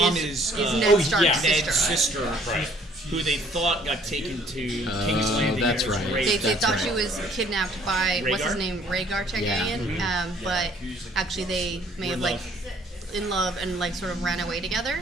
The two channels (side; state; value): both; normal; correlation 0.60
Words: is Ned Stark's Ned's sister. sister, Right. who they thought got taken to King's Landing. that's and was right. raped. They That's thought right. she was kidnapped by what's his Rhaegar? name, Rhaegar Targaryen. But actually, they may have like in love and like sort of ran away together,